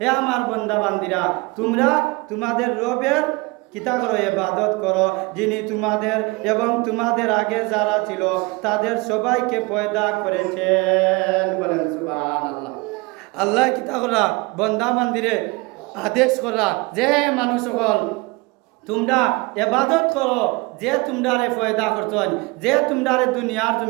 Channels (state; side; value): quieter; left; 25.3 dB